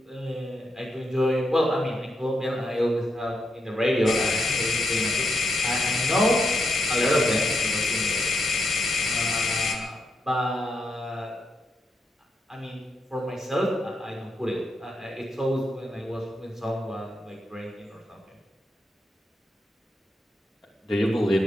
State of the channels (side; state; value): both; normal; correlation 0.83